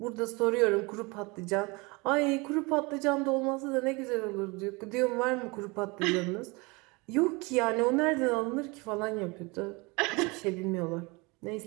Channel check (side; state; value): left; quieter; 26.6 dB